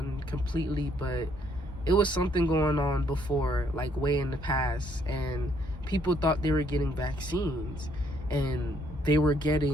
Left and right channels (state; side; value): normal; both; correlation 0.68